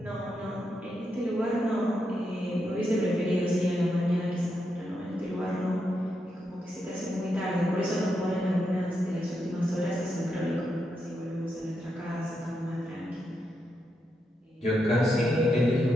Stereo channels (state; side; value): normal; both; correlation 0.84